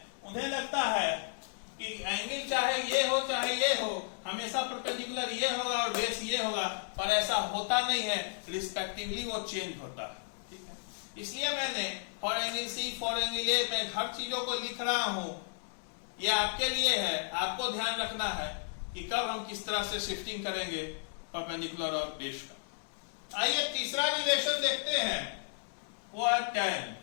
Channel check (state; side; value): silent; right; digital silence